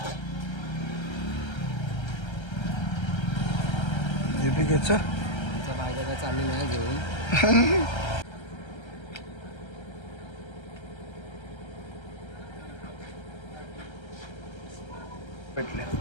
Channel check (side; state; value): right; late; 1.3 ms